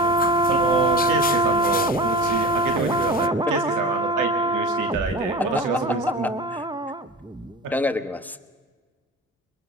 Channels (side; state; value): both; normal; correlation 0.32